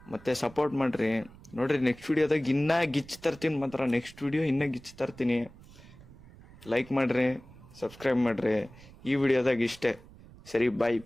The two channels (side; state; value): right; noise; rumble, 21 dB below the sound